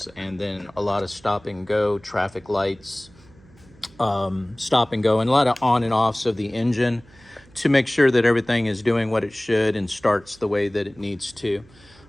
and then a lot of stop and go, traffic lights, stop and go, and a lot of on and offs of the engine to make sure that everything is doing what it should and starts the way that it needs to.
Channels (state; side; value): noise; right; hum, 27 dB below the sound